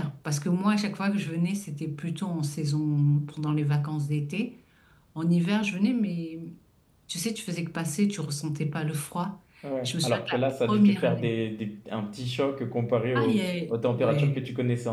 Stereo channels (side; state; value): both; identical; correlation 1.00